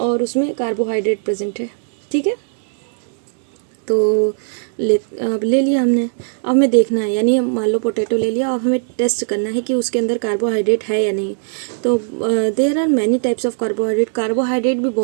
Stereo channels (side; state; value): left; silent; digital silence